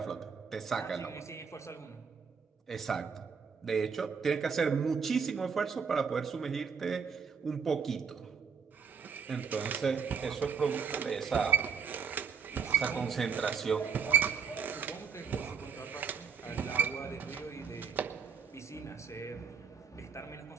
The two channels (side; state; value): left; quieter; 6.2 dB